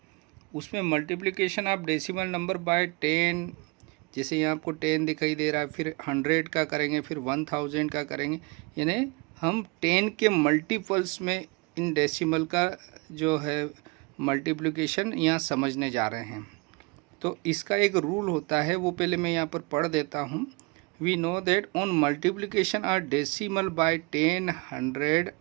उसमें मल्टीप्लिकेशन आप डेसिमल नंबर बाय 10, जैसे यहाँ आपको 10 दिखाई दे रहा है, फिर 100 का करेंगे, फिर 1000 का करेंगे, यानी हम 10 के मल्टीपल्स में इन डेसिमल का जो है मल्टीप्लिकेशन यहाँ समझने जा रहे हैं। तो इसका एक रूल होता है, वो पहले मैं यहाँ पर पढ़ देता हूँ। We know that on multiplication are decimal by 10, 100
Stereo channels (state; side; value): quieter; left; 28.6 dB